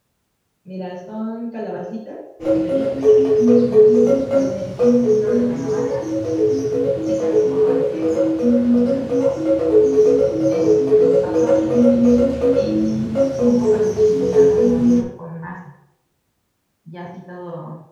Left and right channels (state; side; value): identical; both; correlation 1.00